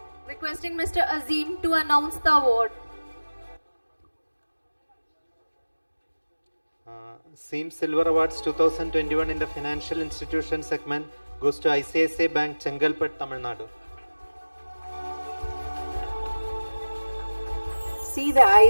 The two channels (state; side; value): inverted; both; correlation -1.00